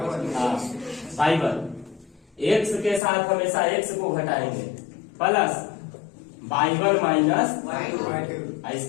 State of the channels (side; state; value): right; drops out; at 3.0 s